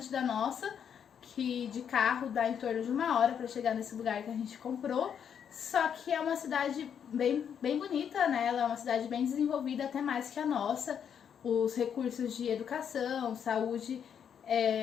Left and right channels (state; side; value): quieter; right; 8.1 dB